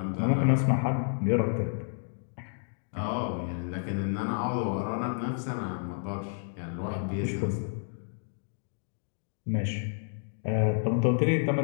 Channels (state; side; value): silent; right; digital silence